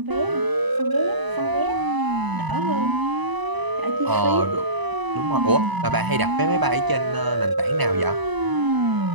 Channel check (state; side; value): late; left; 1.0 ms